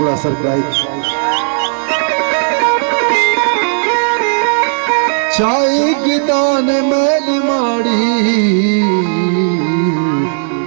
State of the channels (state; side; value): silent; left; digital silence